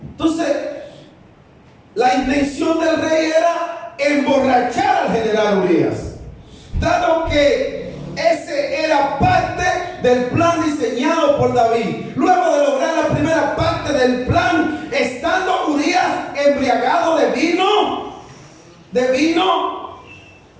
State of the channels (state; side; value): identical; both; correlation 1.00